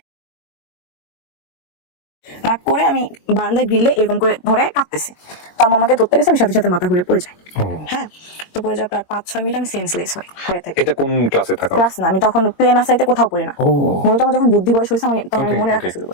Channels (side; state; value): right; late; 22 ms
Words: রাগ করে আমি বারান্দায় গ্রিলে এরকম করে ধরে কাঁদতেছি। তো আম্মু আমাকে ধরতে গেছে, আমি সাথে সাথে মাথা ঘুরে পড়ে যাই। পড়ে যাওয়ার পর 5-6 মিনিট আমি সেন্সলেস হয়ে থাকি। এটা কোন ক্লাসে থাকা? ক্লাস না, আমি তখন প্লে নার্সারিতে কোথাও পড়ি না। মূলত আমার যখন বুদ্ধি বয়স হয়েছে, আমি তখন মনে রাখা শুরু